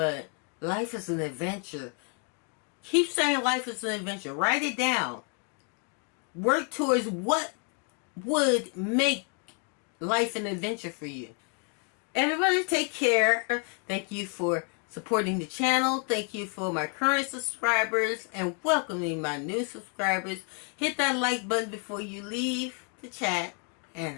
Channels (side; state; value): right; quieter; 38.4 dB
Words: life is an adventure. Keep saying life is an adventure. Write it down. Work towards what would make life an adventure for you. Everybody take care. Thank you for supporting the channel. Thank you for my current subscribers and welcoming my new subscribers. Hit that like button before you leave the chat,